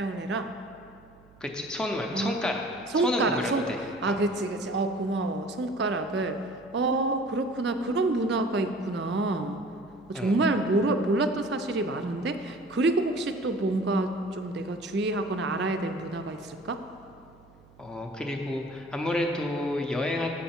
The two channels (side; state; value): right; noise; hum, 26 dB below the sound